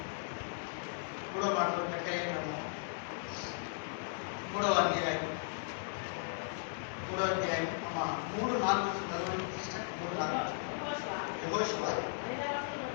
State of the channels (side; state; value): right; silent; digital silence